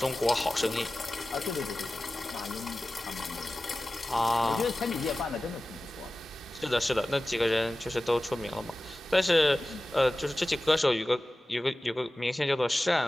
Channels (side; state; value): both; normal; correlation 0.96